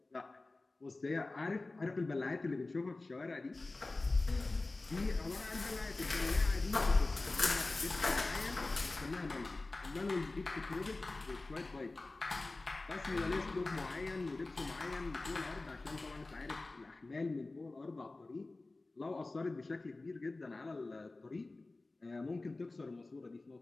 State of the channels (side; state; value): right; quieter; 3.2 dB